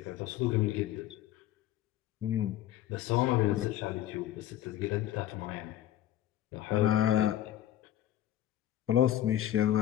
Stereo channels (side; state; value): right; quieter; 12.7 dB